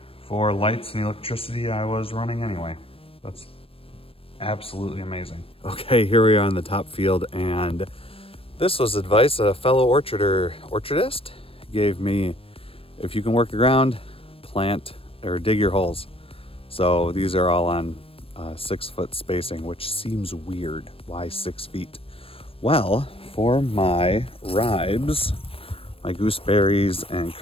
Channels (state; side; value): late; right; 0.27 ms